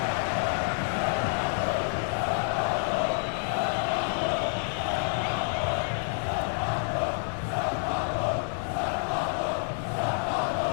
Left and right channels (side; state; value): right; silent; 59 dB below the other